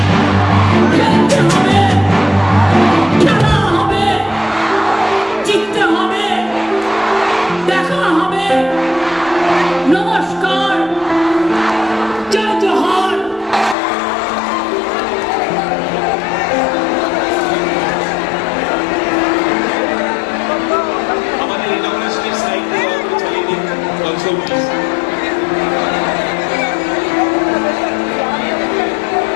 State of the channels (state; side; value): drops out; right; at 13.8 s